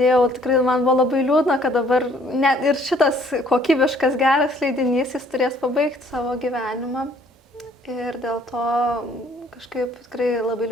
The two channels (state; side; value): normal; both; correlation 0.60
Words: tikrai man buvo labai liūdna, kad dabar net ir šitas kokybiškas geras leidinys, jis turės pabaigti savo gyvenimą. Ir dėl to kažkaip tikrai labai